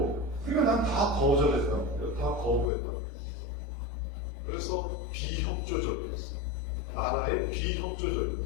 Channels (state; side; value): drops out; right; at 2.7 s